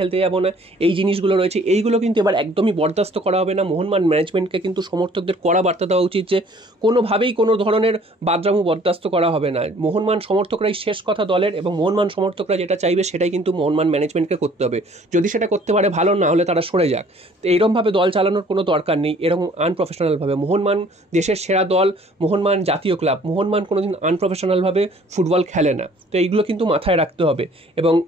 যাব না, এই জিনিসগুলো রয়েছে। এইগুলো কিন্তু এবার একদমই বরদাস্ত করা হবে না। মোহনবাগান ম্যানেজমেন্টকে কিন্তু সমর্থকদের কড়া বার্তা দেওয়া উচিত যে কোনোভাবেই কোনো ধরনের বাদরামু বরদাস্ত করা হবে না। মোহনবাগান সমর্থকরাই শেষ কথা দলের, এবং মোহনবাগান সমর্থকরা যেটা চাইবে সেটাই কিন্তু মোহনবাগান ম্যানেজমেন্টকে করতে হবে। যদি সেটা করতে পারে ভালো, না হলে তারা সরে যাক। তো এইরকমভাবে দল চালানোর কোনো দরকার নেই, এরকম আনপ্রফেশনালভাবে। মোহনবাগান দেশের সেরা দল, মোহনবাগান জাতীয় ক্লাব, মোহনবাগান কোনোদিন আনপ্রফেশনালভাবে ফুটবল খেলে না। তো এইগুলো কিন্তু মাথায় রাখতে হবে। এবং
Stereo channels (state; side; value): normal; both; correlation 0.55